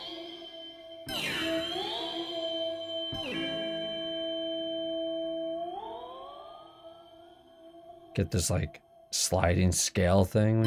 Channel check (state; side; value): identical; both; correlation 1.00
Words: Get this like sliding scale thing